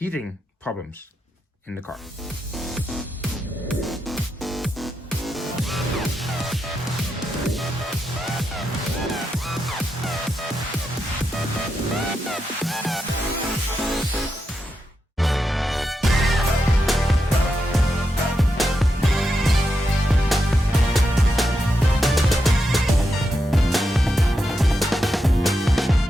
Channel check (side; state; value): both; normal; correlation 0.85